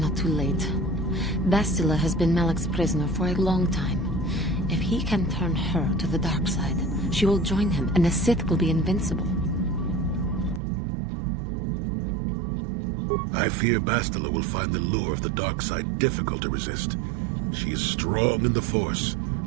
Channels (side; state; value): left; drops out; at 10.6 s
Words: too late. Bastila has been Malak's prisoner for a long time. If he can turn her to the dark side, she will join him, and the Sith will be invincible. I fear Bastila will find the lure of the dark side difficult to resist. She is strong in the Force,